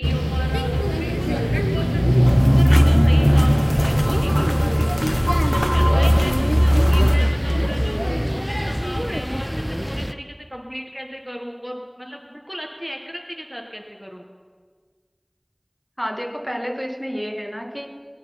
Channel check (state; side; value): identical; both; correlation 1.00